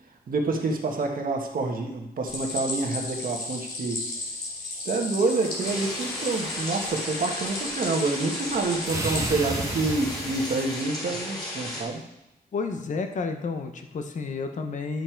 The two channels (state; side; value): normal; both; correlation 0.48